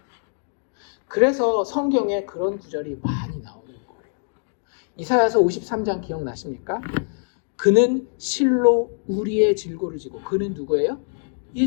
그래서 성경에 그런 구절이 많이 나오는 거예요. 이사야서 53장 기억나십니까? 그는 실로 우리의 질고를 지고, 그는 누구예요?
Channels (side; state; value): right; silent; digital silence